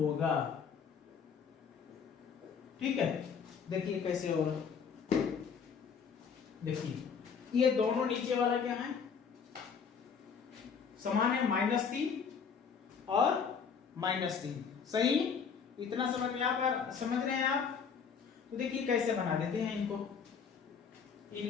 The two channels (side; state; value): right; quieter; 6.4 dB